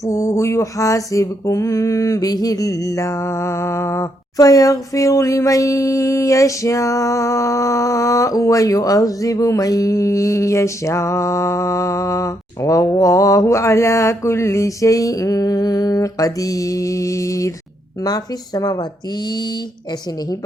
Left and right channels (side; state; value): both; normal; correlation 0.76